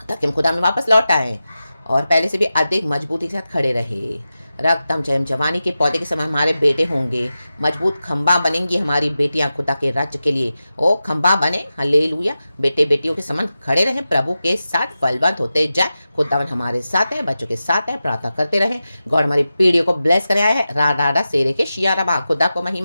ताकि हम खुदा में वापस लौट आए और पहले से भी अधिक मजबूती के साथ खड़े रहे। रक्तम जयम। जवानी के पौधे के समान हमारे बेटे होंगे, मजबूत खंबा बनेंगी हमारी बेटियां खुदा के राज्य के लिए। ओ खंबा बने, हालेलुया। बेटे बेटियों के समान खड़े रहें, प्रभु के साथ फलवंत होते जाए। खुदावन हमारे साथ है, बच्चों के साथ है, प्रार्थना करते रहें। गॉड हमारी पीढ़ियों को ब्लेस कर आया है। रा डाडा शेरे के शियाराबा। खुदा को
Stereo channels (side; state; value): both; inverted; correlation -0.93